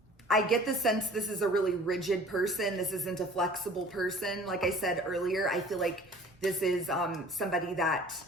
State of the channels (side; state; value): both; normal; correlation 0.48